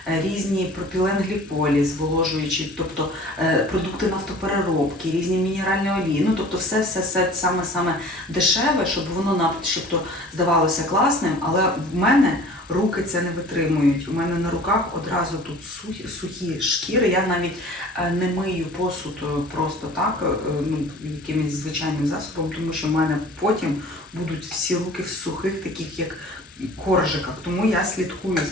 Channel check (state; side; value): normal; both; correlation 0.45